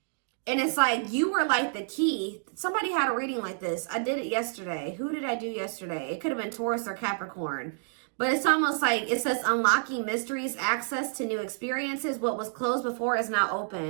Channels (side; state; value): left; silent; digital silence